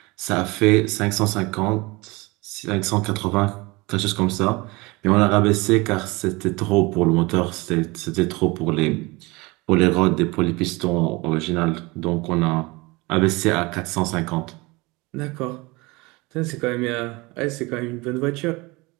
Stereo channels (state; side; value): quieter; left; 24.1 dB